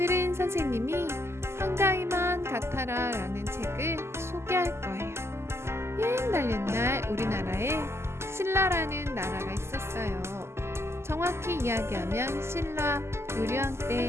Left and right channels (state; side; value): late; left; 0.12 ms